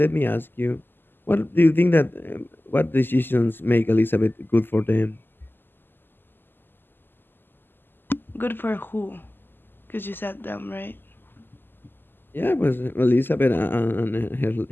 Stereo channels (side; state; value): right; late; 0.096 ms